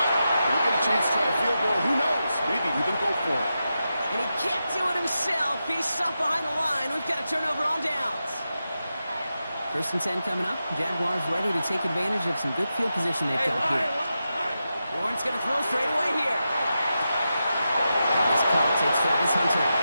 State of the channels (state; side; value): inverted; both; correlation -0.89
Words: We'll get a chance to try a field goal. Who knows? Maybe even go for it. And he can't do it himself. He's stuck behind the line. We've got a turnover on downs. 1st and 10 coming up. Jaguars ready to take advantage of some good field position they've got here. Lawrence going to throw straight away here. This call takes Travis Hunter.